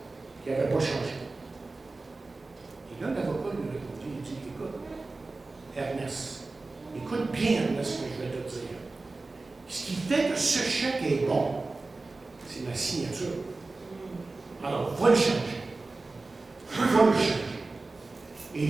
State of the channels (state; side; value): quieter; left; 3.5 dB